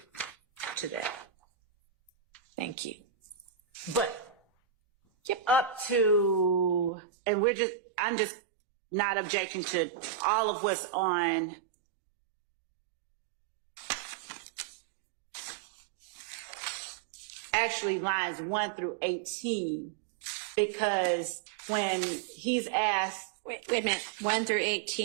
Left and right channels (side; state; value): left; drops out; at 6.9 s